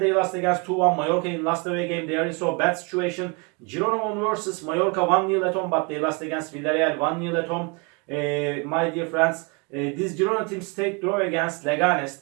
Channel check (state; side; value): quieter; left; 31.8 dB